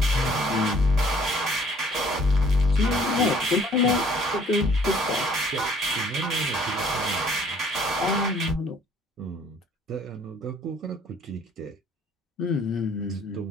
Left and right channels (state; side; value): normal; both; correlation 0.59